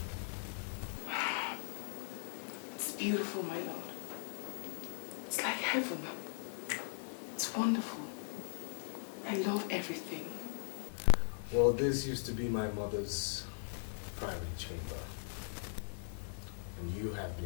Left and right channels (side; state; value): right; silent; digital silence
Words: It's beautiful, my lord. It's like heaven. It's wonderful. I love everything. Well, this used to be my mother's private chamber. And you have